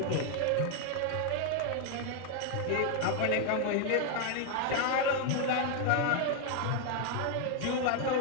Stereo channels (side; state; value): both; different; correlation 0.00